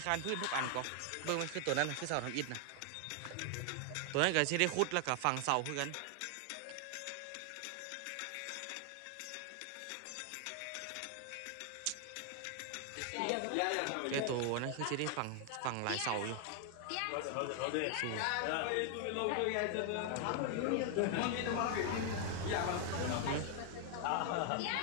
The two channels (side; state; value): both; different; correlation 0.00